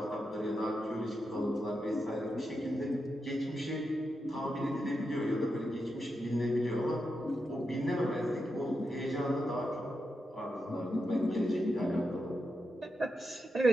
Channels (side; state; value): both; normal; correlation 0.86